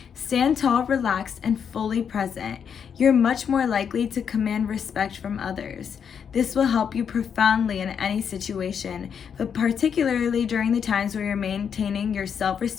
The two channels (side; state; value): right; quieter; 7.4 dB